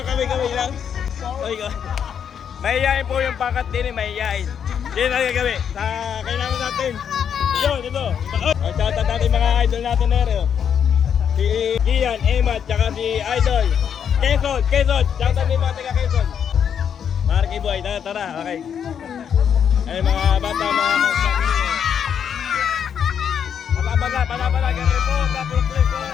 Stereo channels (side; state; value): right; quieter; 8.0 dB